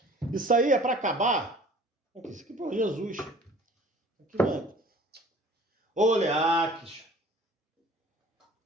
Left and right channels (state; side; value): normal; both; correlation 0.48